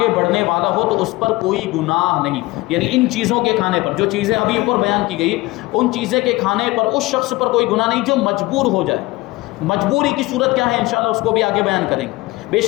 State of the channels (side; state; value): right; quieter; 20.8 dB